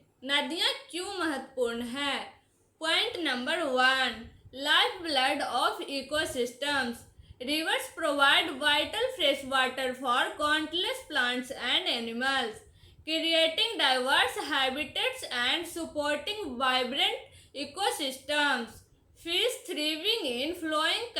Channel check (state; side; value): identical; both; correlation 1.00